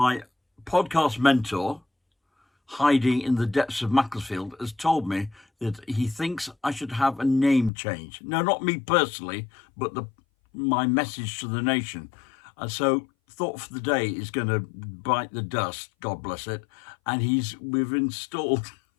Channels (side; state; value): right; drops out; at 7.7 s